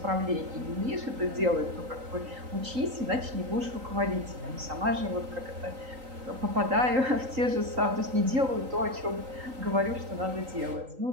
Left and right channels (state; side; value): late; left; 3.8 ms